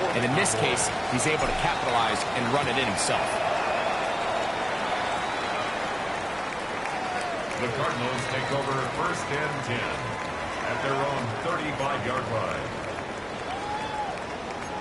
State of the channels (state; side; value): identical; both; correlation 1.00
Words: and in this case, he's able to capitalize and run it in himself. The Cardinals take over 1st and 10 at their own 45-yard line.